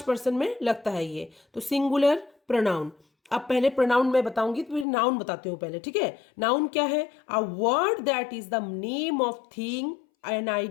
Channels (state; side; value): drops out; right; at 4.9 s